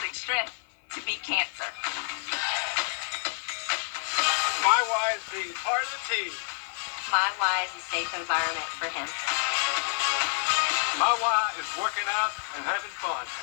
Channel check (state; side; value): silent; right; 58 dB below the other